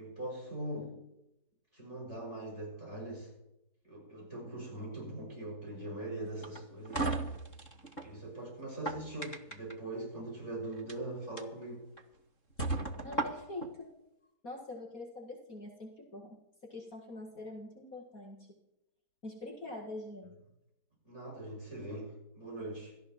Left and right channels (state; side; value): late; right; 3.7 ms